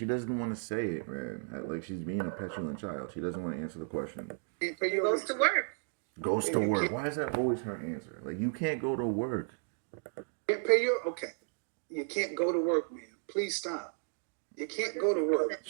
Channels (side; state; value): left; silent; 55 dB below the other